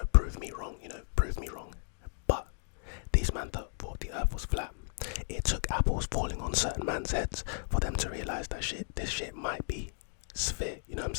certain man's heads for them to realize that this shit might be sphere, you know what I'm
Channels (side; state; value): right; silent; digital silence